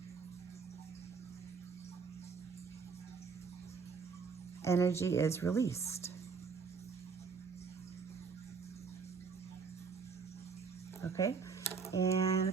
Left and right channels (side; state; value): left; quieter; 5.3 dB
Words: energy is released. Okay, and a